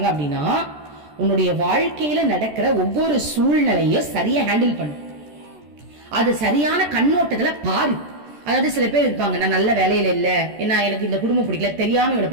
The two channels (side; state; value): left; late; 14 ms